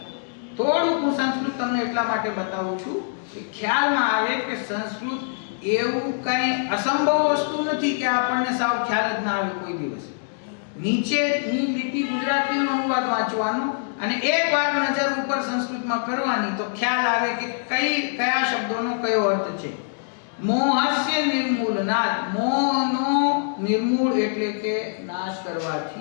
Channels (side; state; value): right; silent; digital silence